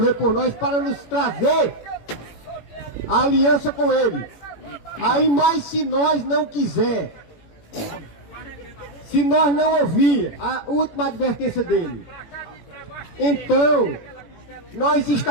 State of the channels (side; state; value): right; late; 18 ms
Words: por nós, para nos trazer a aliança com Ele. Aí, mas se nós não quiser, se nós não ouvir a última advertência dele, então nós